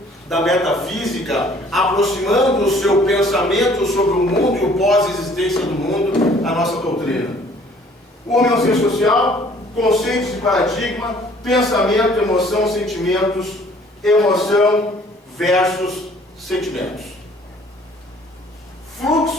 da metafísica, aproximando o seu pensamento sobre o mundo e o pós-existência do mundo à nossa doutrina. O homem é um ser social, conceitos de paradigma, pensamento, emoção, sentimentos, emoção versus sentimentos.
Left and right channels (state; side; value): normal; both; correlation 0.56